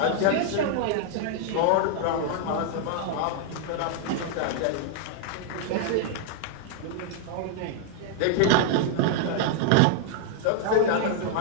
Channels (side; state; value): both; different; correlation -0.01